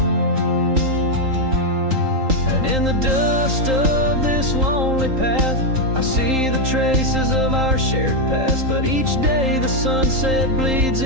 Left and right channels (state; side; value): late; left; 3.8 ms